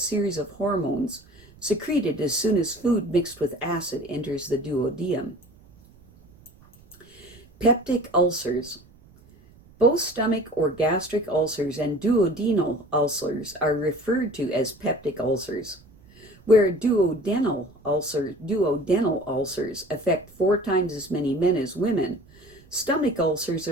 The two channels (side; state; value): right; noise; rumble, 26 dB below the sound